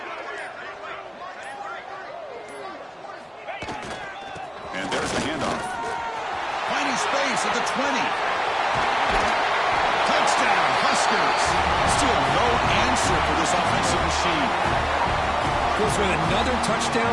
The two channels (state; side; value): identical; both; correlation 1.00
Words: And there's the handoff. Finding space at the 20. Touchdown, Huskers. Still no answer for this offensive machine. Goes with another